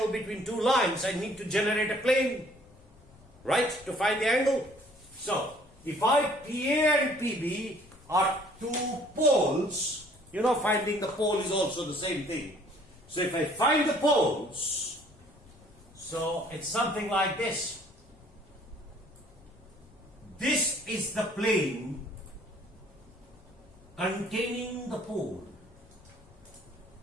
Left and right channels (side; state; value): left; noise; rumble, 25 dB below the sound